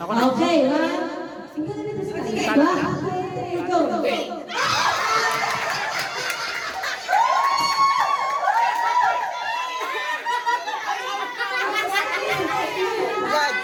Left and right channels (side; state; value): both; identical; correlation 1.00